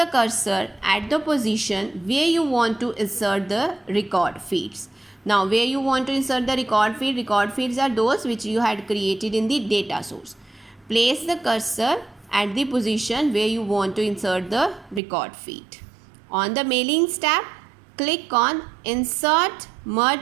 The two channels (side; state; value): left; drops out; at 15.0 s